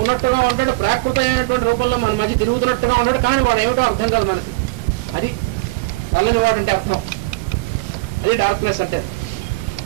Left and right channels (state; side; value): quieter; left; 24.3 dB